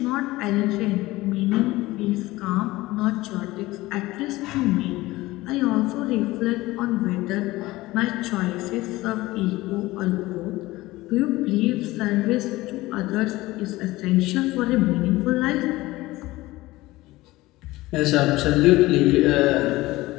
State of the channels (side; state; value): right; quieter; 18.9 dB